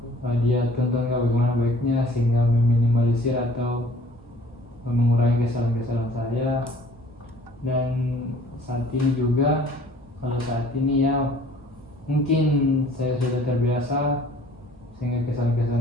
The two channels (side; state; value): both; normal; correlation 0.53